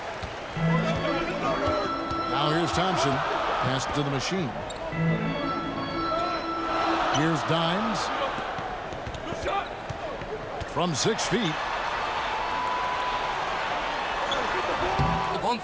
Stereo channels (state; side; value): identical; both; correlation 1.00